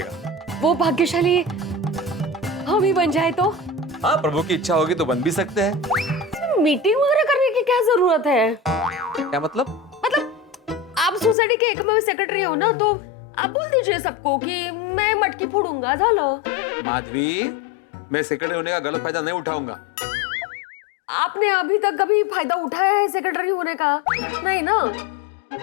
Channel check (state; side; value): drops out; right; at 11.4 s